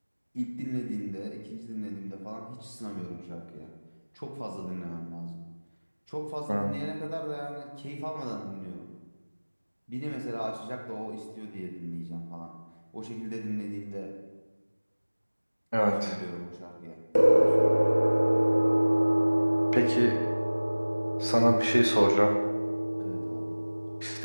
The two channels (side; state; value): both; inverted; correlation -1.00